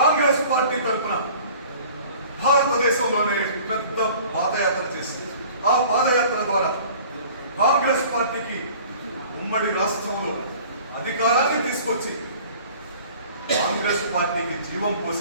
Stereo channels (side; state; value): both; inverted; correlation -0.48